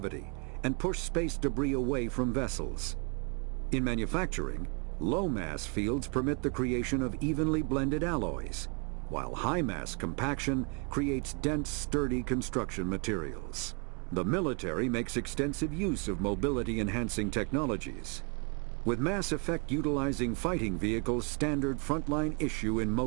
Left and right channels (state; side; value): quieter; left; 35.3 dB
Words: and push space debris away from vessels. In manufacturing, low-mass fields permit the creation of evenly blended alloys, while high-mass compaction creates dense, sturdy construction materials. The military makes extensive use of mobility-enhancing technologies, with mass effect utilizing fighting vehicles standard frontline issue in